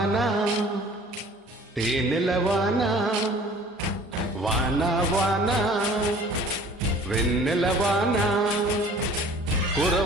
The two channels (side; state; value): both; normal; correlation 0.49